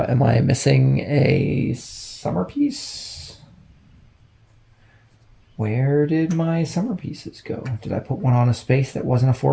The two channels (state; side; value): identical; both; correlation 1.00